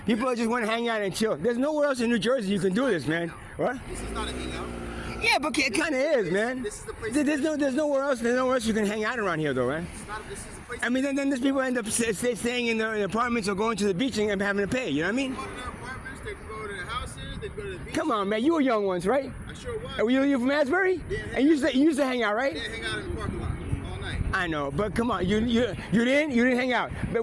People just want to hang out and chill. There's nowhere else in New Jersey you can do this, man. What? This is not a hangout. Yeah, but it kind of is, man. This is the place. There's nowhere else you can hang out around here, though, right? This is the place. I mean, then these people end up staying in their apartments or going to the beach and having to pay. You know what I mean? They go to their apartments. They can go to their houses. They can go to the beach. Come on, man. You were young once, right? I sure was. Were you from Asbury? Yeah. And you used to hang out, right? Yeah, hang out in the parking lot all night. I know, but come on, you didn't hang out.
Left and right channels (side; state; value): both; identical; correlation 1.00